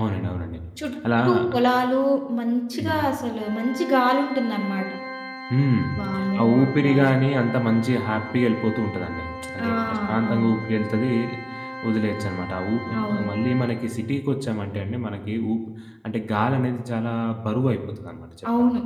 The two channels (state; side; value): identical; both; correlation 1.00